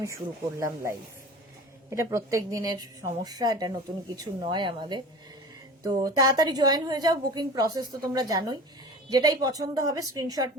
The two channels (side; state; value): both; normal; correlation 0.37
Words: শুরু করলাম লাইভ। এটা প্রত্যেক দিনের সমস্যা, এটা নতুন কিছু নয় আমাদের। তো তাড়াতাড়ি জয়েন হয়ে যাও। বুকিং প্রসেস তো তোমরা জানোই। যেটাই পছন্দ হবে স্ক্রিনশট